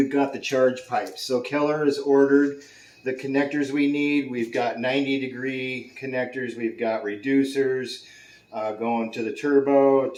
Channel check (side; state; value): both; identical; correlation 1.00